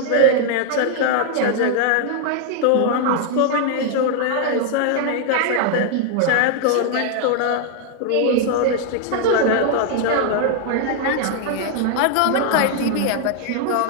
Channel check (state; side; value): different; both; correlation 0.00